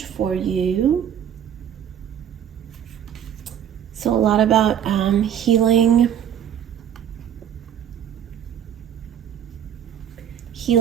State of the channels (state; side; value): quieter; left; 9.4 dB